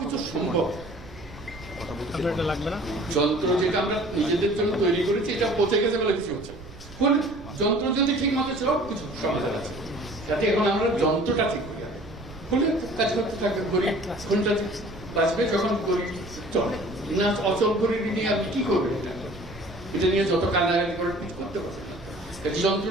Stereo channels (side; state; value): right; noise; rumble, 18 dB below the sound